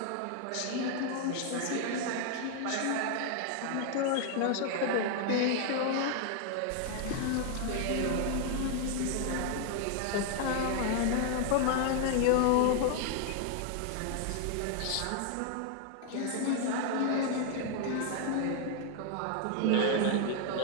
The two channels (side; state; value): both; different; correlation 0.00